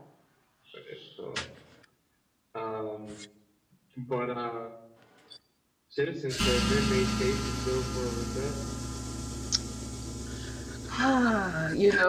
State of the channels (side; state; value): both; identical; correlation 1.00